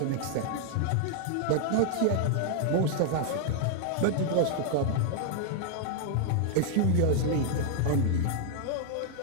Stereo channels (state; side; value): different; both; correlation 0.00